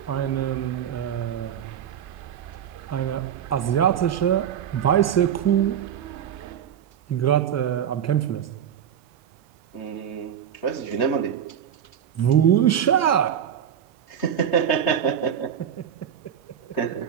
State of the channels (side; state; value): left; quieter; 9.1 dB